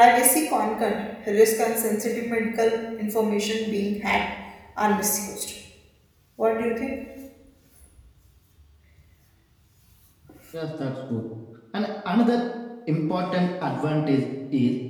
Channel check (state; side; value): identical; both; correlation 1.00